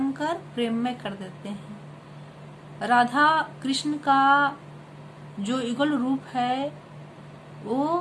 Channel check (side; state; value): both; identical; correlation 1.00